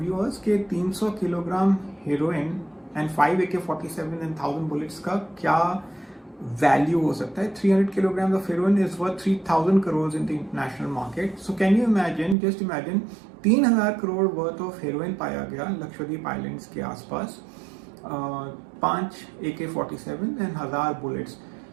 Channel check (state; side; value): drops out; left; at 12.4 s